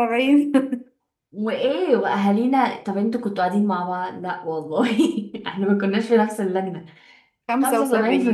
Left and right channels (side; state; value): both; identical; correlation 1.00